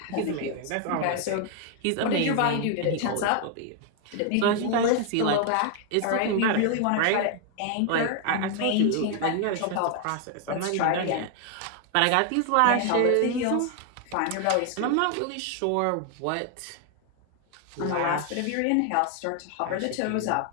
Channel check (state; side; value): different; both; correlation 0.00